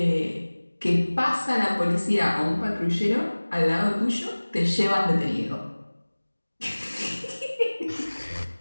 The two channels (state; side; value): inverted; both; correlation -1.00